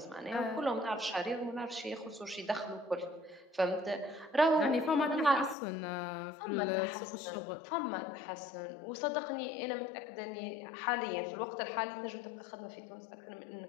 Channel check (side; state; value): right; drops out; at 5.6 s